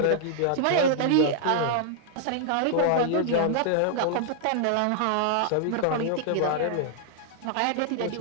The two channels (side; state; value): both; different; correlation 0.00